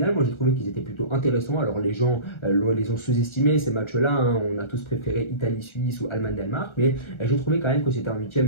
Moi j'ai trouvé qu'ils étaient plutôt intéressants. Alors les gens les ont sous-estimés ces matchs-là, hein. On a tous préféré Italie-Suisse ou Allemagne-Danemark, mais j'ai trouvé quand même que c'était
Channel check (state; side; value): late; right; 1.3 ms